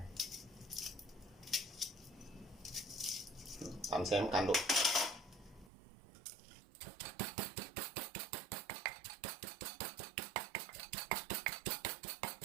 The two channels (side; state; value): left; drops out; at 5.7 s